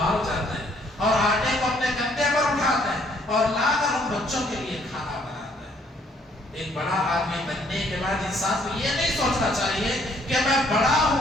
جاتے ہیں اور آٹے کو اپنے کندھے پر اٹھاتے ہیں اور لا کر ان بچوں کے لیے کھانا بناتے ہیں۔ ایک بڑا آدمی بننے کے بعد انسان کو یہ نہیں سوچنا چاہیے کہ میں بڑا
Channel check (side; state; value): both; normal; correlation 0.65